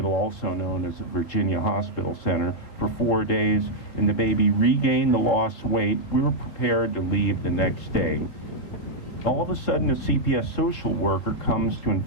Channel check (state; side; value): late; right; 3.9 ms